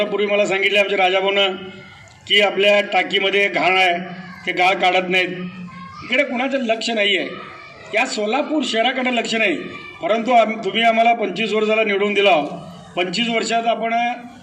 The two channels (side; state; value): both; identical; correlation 1.00